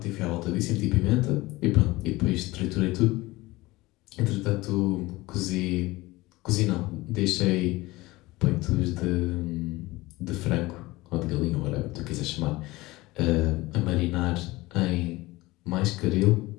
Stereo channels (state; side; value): quieter; right; 20.3 dB